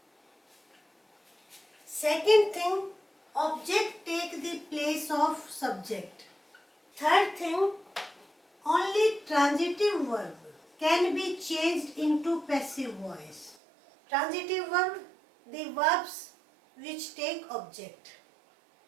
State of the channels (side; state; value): left; drops out; at 13.6 s